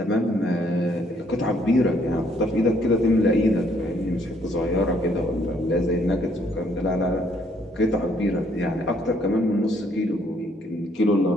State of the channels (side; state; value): both; normal; correlation 0.67